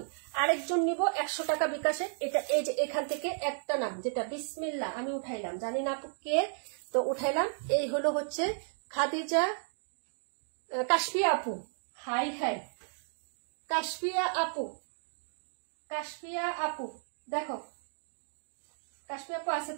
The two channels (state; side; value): silent; left; digital silence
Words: আরেকজন নিব 100 টাকা বিকাশে। এটা এই যে এখান থেকে একটা নাম, যেটা বিসমিল্লাহ, আমি উঠাইলাম, জানি না আপু কে, তো উঠাইলাম। এই হলো হচ্ছে খাদিজা কাশফিয়া আপু। হাই হাই কাশফিয়া আপু, কাশফিয়া আপু দেখো, কাশফিয়া আপু আছে